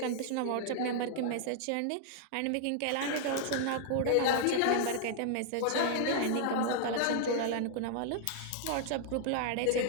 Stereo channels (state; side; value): different; both; correlation -0.01